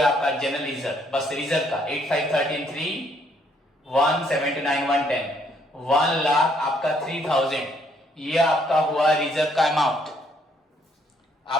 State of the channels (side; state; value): both; normal; correlation 0.68